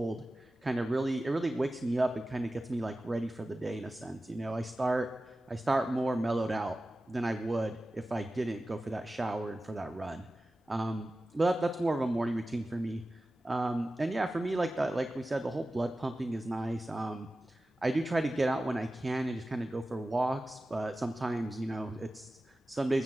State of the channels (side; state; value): both; normal; correlation 0.95